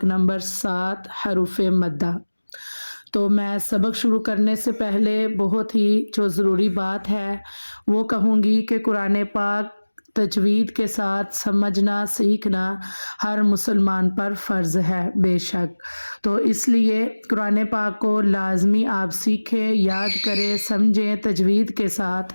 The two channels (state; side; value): inverted; both; correlation -1.00